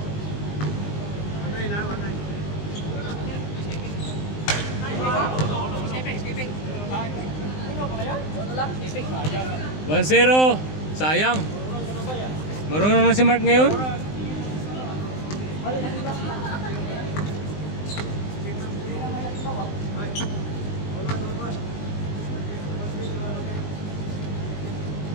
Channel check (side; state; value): right; late; 19 ms